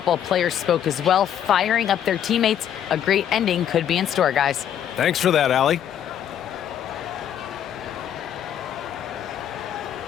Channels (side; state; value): right; quieter; 9.9 dB